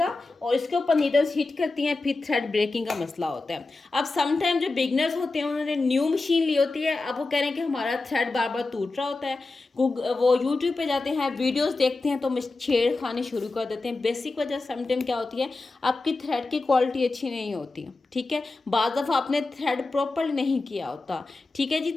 और इसके ऊपर नीडल्स हिट करती हैं, फिर थ्रेड ब्रेकिंग का मसला होता है। अब समटाइम जो बिगनर्स होते हैं उन्होंने न्यू मशीन ली होती है, अब वो कह रहे हैं कि हमारा थ्रेड बार बार टूट रहा होता है। वो यूट्यूब पे जाते हैं, वीडियोस देखते हैं, तो छेड़खानी शुरू कर देते हैं। बेसिक वजह समटाइम क्या होती है, आपकी थ्रेड की क्वालिटी अच्छी नहीं होती। ठीक है, बाज़ दफ़ा आपने थ्रेड प्रॉपर नहीं किया होता। ठीक है जी,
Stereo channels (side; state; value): right; quieter; 3.4 dB